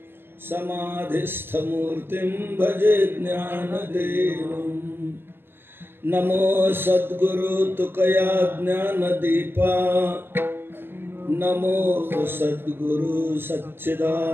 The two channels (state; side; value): late; left; 0.10 ms